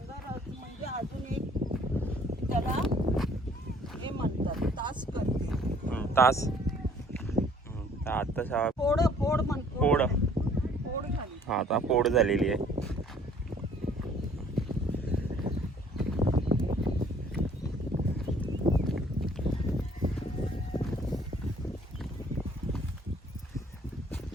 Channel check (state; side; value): normal; both; correlation 0.58